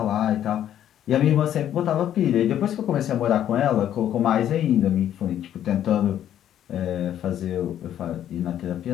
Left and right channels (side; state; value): right; quieter; 10.9 dB